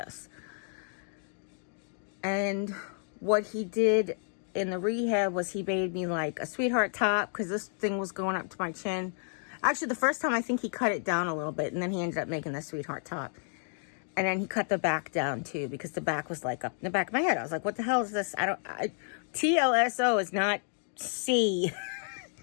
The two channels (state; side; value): silent; right; 57 dB below the other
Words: And what he did in the rehab was he made me like a sweetheart top, because this thing was going up to my chin. Actually, the first time I think he cut it down a little bit, and then he ended up making the sweetheart top. And then he cut the back down too, because the back was like up in the back of my head. I was like, what the hell is this? TLSO is not C.